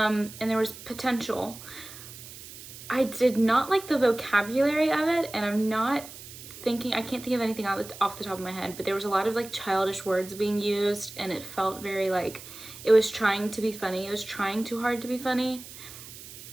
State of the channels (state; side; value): noise; right; hiss, 15 dB below the sound